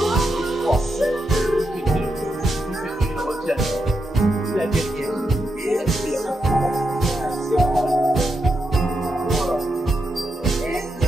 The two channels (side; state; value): both; normal; correlation 0.85